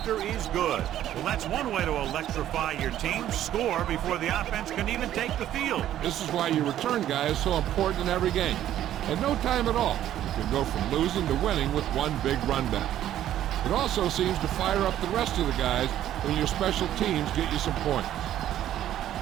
is good. Well, that's one way to electrify your team. Score before the offense can even take the field. This is why your return guy is so important in every game. At no time at all, you can go from losing to winning with one big run back. It also seems to fire up the rest of the guys when your special teams get you some points.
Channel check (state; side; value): quieter; left; 12.0 dB